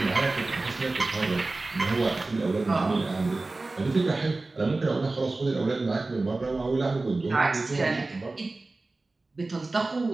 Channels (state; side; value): quieter; left; 3.2 dB